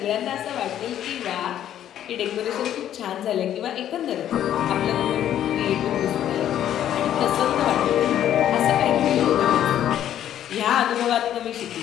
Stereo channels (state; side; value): quieter; right; 11.0 dB